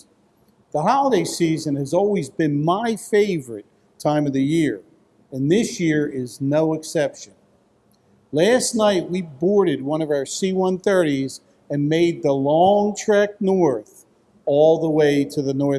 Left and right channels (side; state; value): both; identical; correlation 1.00